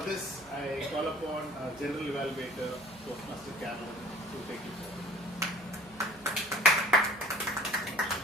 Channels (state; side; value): noise; right; hum, 24 dB below the sound